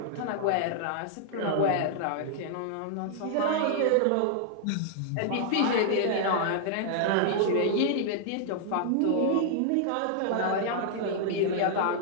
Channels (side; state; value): both; different; correlation -0.01